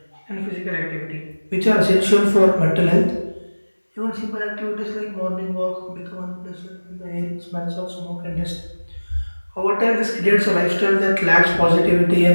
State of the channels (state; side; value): inverted; both; correlation -1.00